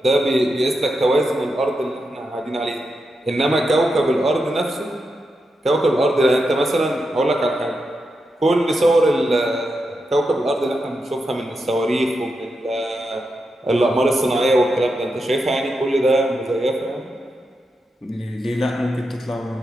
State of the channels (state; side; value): normal; both; correlation 0.86